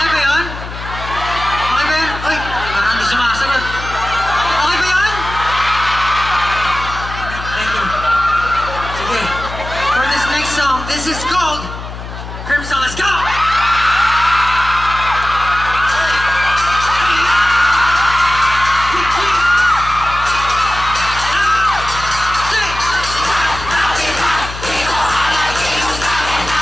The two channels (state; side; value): noise; left; hum, 10 dB below the sound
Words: Okay ba yun? Okay ba yun? Uy, parang hindi sumasagot. Okay ba yun? Thank you. Sige. For this next song, this is called Crimson. Let's go!